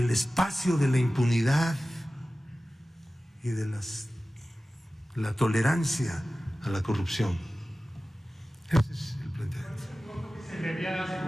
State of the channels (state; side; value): normal; both; correlation 0.96